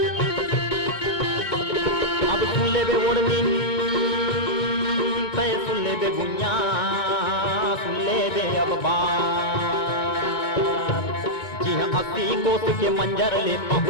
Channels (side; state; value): right; late; 1.9 ms